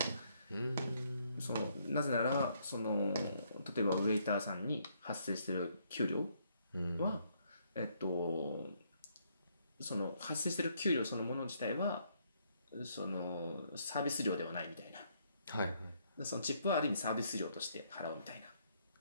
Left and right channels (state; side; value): inverted; both; correlation -0.71